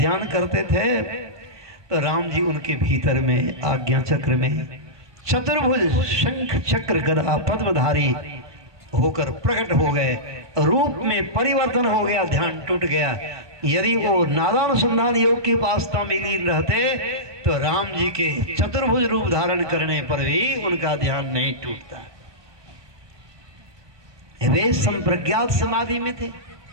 करते थे। तो राम जी उनके भीतर में आज्ञा चक्र में चतुर्भुज शंख चक्र गदा पद्मधारी होकर प्रकट हो गए। रूप में परिवर्तन हो गया, ध्यान टूट गया। यदि वो नादानुसंधान योग की उपासना में लीन रहते तो राम जी के चतुर्भुज रूप धारण करने पर भी उनका ध्यान नहीं टूटता। वे संप्रज्ञात समाधि में थे,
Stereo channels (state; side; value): late; left; 1.2 ms